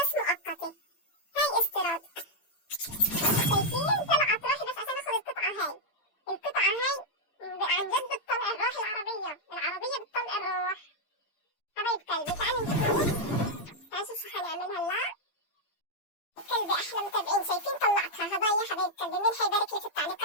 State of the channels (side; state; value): right; late; 11 ms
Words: مؤقتة. هاي استيراد. شايفين طلعت روحي بس عشان اخذ القطعة هاي. القطعة هاي عن جد بتطلع الروح، العربية بتطلع الروح. حبايب قلبي تعالوا نشوف شو حنعمل هلا. قلبي احلى متابعين شايفين طلعتها هدايا. حبايب قلبي مين حيبارك لي في